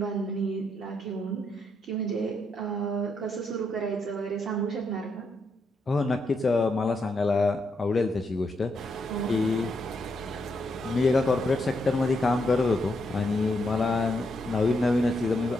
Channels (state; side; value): normal; both; correlation 0.79